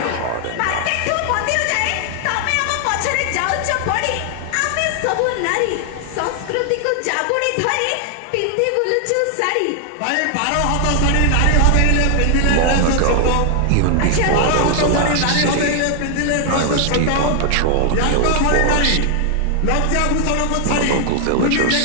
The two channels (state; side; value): different; both; correlation 0.00